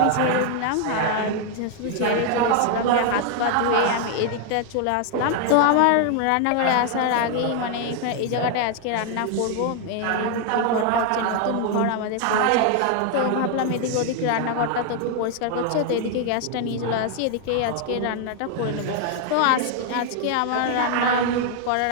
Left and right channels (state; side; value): different; both; correlation 0.00